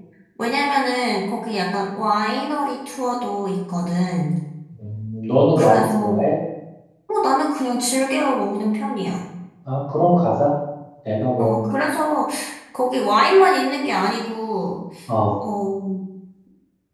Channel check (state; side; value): identical; both; correlation 1.00